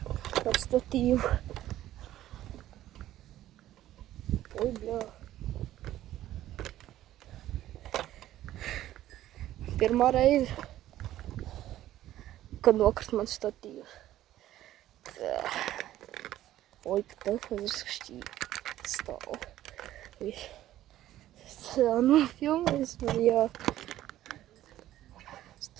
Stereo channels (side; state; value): left; quieter; 13.5 dB